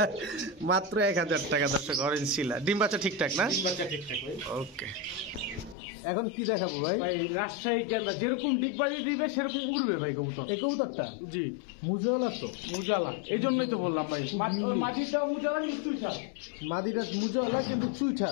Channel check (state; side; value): drops out; right; at 5.8 s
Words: মাত্র 1000 টাকা দর্শক অরেঞ্জ চিলা। ডিম বাচ্চা ঠিকঠাক না? ডিম বাচ্চা ঠিকঠাক ভাই। ওকে এখন কি দেখাবো ভাই? ভাই রাজশাহী কেন্দ্র যেরকম ডিগবাজি দিবে সেরকম উড়বে ভাই কবুতর। এই কবুতরটা জি মুজালা তো? মুজালা, এই জন্যই তো বললাম ভাই। মাটিটা মুজালা কিন্তু চুইঠাল। মাদিটা মুজালা কিন্তু